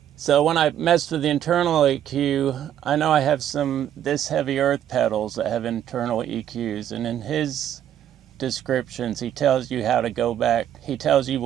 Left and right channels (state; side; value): quieter; left; 10.6 dB